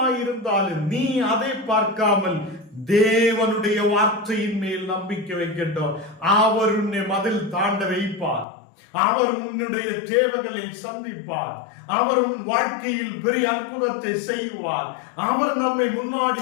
இருந்தாலும், நீ அதை பார்க்காமல் தேவனுடைய வார்த்தையின் மேல் நம்பிக்கை வைக்கட்டும். அவர் உன்னை மதில் தாண்ட வைப்பார், அவர் உன்னுடைய தேவைகளை சந்திப்பார், அவர் உன் வாழ்க்கையில் பெரிய அற்புதத்தை செய்வார், அவர் நம்மை முன்னாடி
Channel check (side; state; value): right; drops out; at 8.5 s